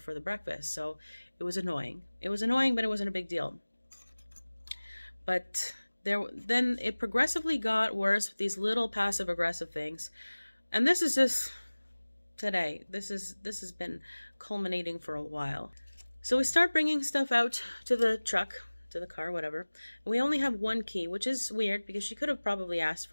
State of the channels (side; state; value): both; inverted; correlation -1.00